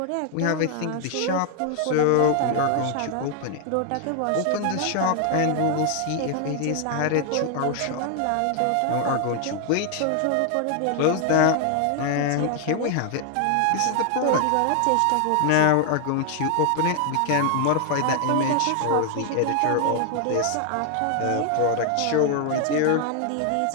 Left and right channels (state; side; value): different; both; correlation 0.00